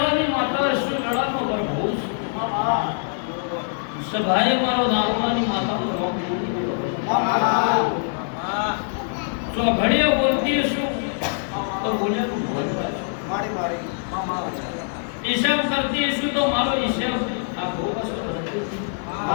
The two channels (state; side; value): silent; right; digital silence